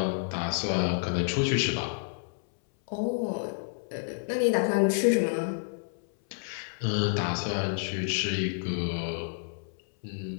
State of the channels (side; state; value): right; silent; 58 dB below the other